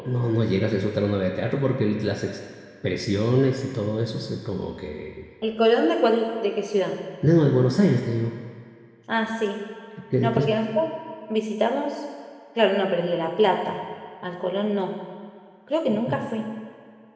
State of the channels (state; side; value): identical; both; correlation 1.00